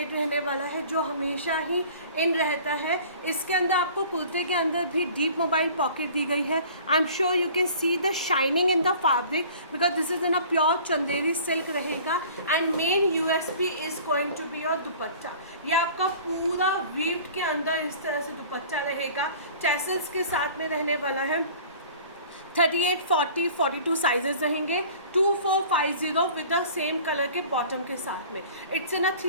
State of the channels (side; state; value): both; inverted; correlation -0.46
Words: रहने वाला है जो हमेशा ही इन रहता है। इसके अंदर आपको कुर्ते के अंदर भी डीप मोबाइल पॉकेट दी गई है। I am sure you can see the shining in the fabric because this is in a pure Chanderi silk रहेगा and main USP is going to be your dupatta. ये आपका पूरा वीव्ड के अंदर इस तरह से दुपट्टा रहेगा, टैसल्स के साथ में रहने वाला है। 38, 40, 42 साइजेस रहेंगे। 2450 विद द सेम कलर के बॉटम के साथ में। It's in a